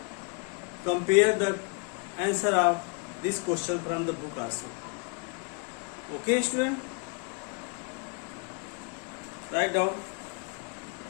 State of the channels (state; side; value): quieter; right; 35.1 dB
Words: compare the answer of this question from the book also. Okay, student? Write down.